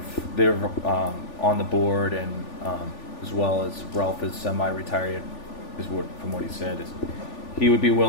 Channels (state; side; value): late; right; 3.4 ms